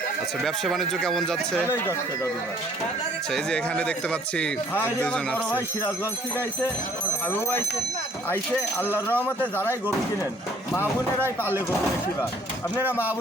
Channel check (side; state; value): both; normal; correlation 0.59